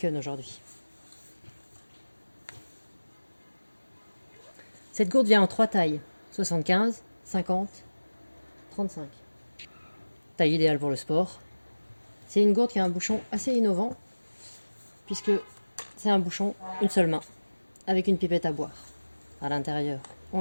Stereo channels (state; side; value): inverted; both; correlation -1.00